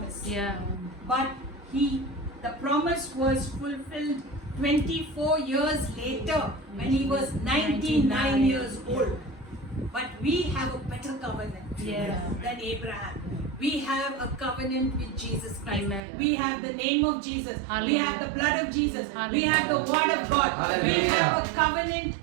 Yeah. But the promise was fulfilled 24 years later when he was 99 years old. But we have a better covenant Yeah. than Abraham. We have a covenant with Jesus Christ. Amen. We have the name of Jesus. We Hallelujah. have the blood of Jesus. We Hallelujah. have the word of God. We Hallelujah. have a covenant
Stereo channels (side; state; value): left; drops out; at 16.0 s